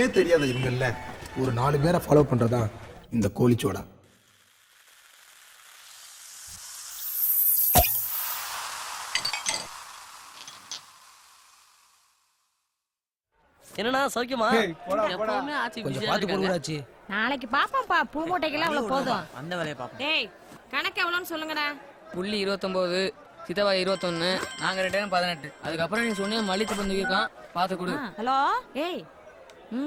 தெரியாத இவங்கல்ல ஒரு 4 பேரை ஃபாலோ பண்றதா இந்த கோலிச்சோடா. என்னன்னா சௌக்கியமா? எப்பவுமே ஆச்சி கொஞ்சம் பிஸியா பார்த்து இருக்காங்க. போடுவாச்சு. நாளைக்கு பாப்போம்ப்பா. பூ மூட்டைக்கெல்லாம் அவ்வளவு போதும். அந்த வேலையை பாப்போம். டேய் கணக்கு எவ்வளோன்னு சொல்லுங்கடா. புள்ளி 29, சித்தவா 21, நாங்க 2 18. அதுக்கப்புறம் நீ சொன்னிய மல்லித்து பந்து இருக்கான், பாத்து கொடு. ஹலோ ஏய்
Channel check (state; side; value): identical; both; correlation 1.00